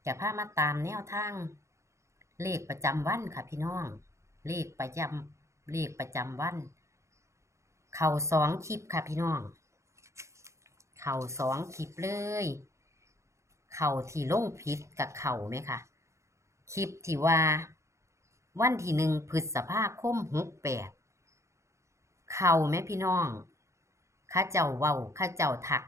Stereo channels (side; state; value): left; late; 0.14 ms